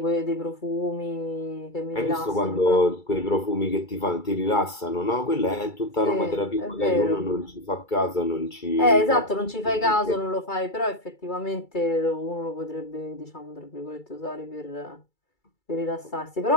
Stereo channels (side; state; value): right; late; 2.3 ms